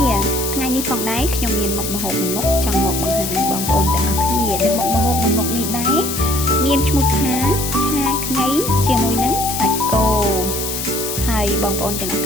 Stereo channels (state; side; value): noise; left; hiss, 4 dB below the sound